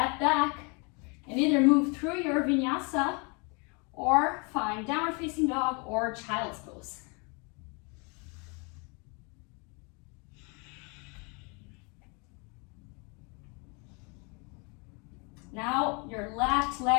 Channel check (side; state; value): right; quieter; 32.6 dB